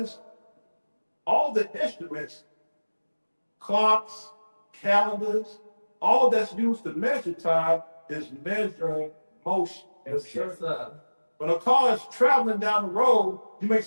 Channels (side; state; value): both; inverted; correlation -1.00